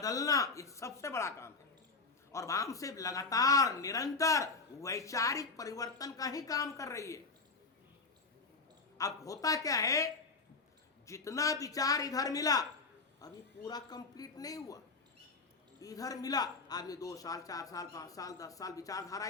ये सबसे बड़ा काम है। और वाम से लगातार निरंतर वैचारिक परिवर्तन का ही काम कर रही है। अब होता क्या है, जितना विचार इधर मिला अभी पूरा कंप्लीट नहीं हुआ। इधर मिला आदमी 2 साल 4 साल 5 साल 10 साल विचारधारा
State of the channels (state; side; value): quieter; right; 4.1 dB